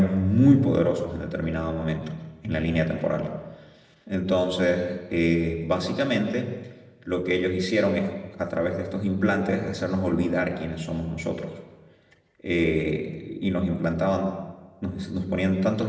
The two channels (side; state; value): both; identical; correlation 1.00